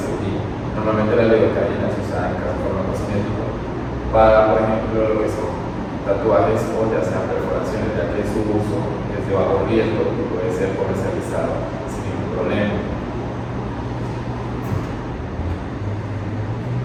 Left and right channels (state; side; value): identical; both; correlation 1.00